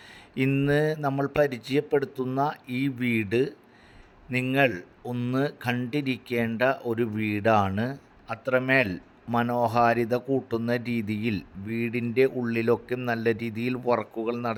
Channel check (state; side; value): identical; both; correlation 1.00